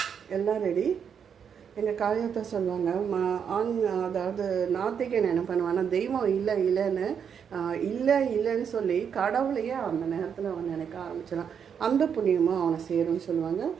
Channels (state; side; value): quieter; left; 7.4 dB